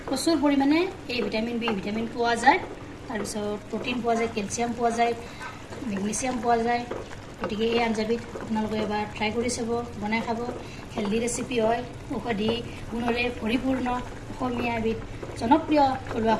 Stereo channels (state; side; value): identical; both; correlation 1.00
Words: প্ৰচুৰ পৰিমাণে এ ভিটামিন বি ভিটামিন পোৱা যায় তাৰপিছত প্ৰটিন পোৱা যায় কেলছিয়াম পোৱা যায় মেগনেছিয়াম পোৱা যায় গতিকে এই আঞ্জাবিধ আপোনালোকে এবাৰ ট্ৰাই কৰি চাব বনাই খাব হেল্ডি ৰেচিপি হয় ঔষধি গুণৰে পৰিপূৰ্ণ অসমীয়া এবিধ জনপ্ৰিয় থলুৱা